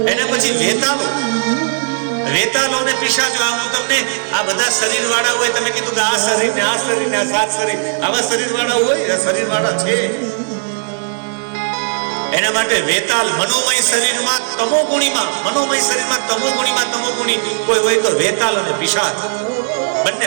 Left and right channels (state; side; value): silent; left; 65 dB below the other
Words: એના પછી વેતાલો ને પિશાચો. આ હું તમને આ બધા શરીર વાળા હોય, તમે કીધું કે આ શરીર ને આ શરીર ને આ 7 શરીર, આવા શરીર વાળા હોય, શરીર વાળા છે. એના માટે વેતાલ મનોમય શરીરમાં તમોગુણીમાં, મનોમય શરીરમાં તમોગુણી કોઈ હોય તો વેતાલ અને પિશાચ બંને